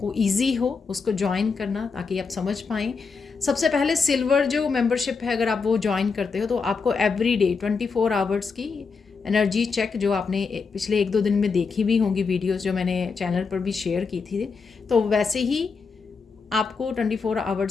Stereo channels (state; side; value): quieter; right; 5.0 dB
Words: ईजी हो उसको ज्वाइन करना, ताकि आप समझ पाएँ। सबसे पहले सिल्वर जो मेंबरशिप है, अगर आप वो ज्वाइन करते हो तो आपको एवरी डे 24 आवर्स की एनर्जी चेक, जो आपने पिछले 1-2 दिन में देखी भी होंगी वीडियोस जो मैंने चैनल पर भी शेयर की थी, तो वैसे ही आपको 24